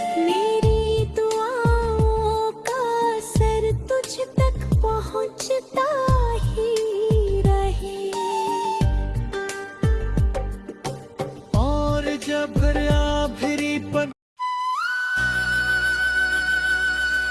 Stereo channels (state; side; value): identical; both; correlation 1.00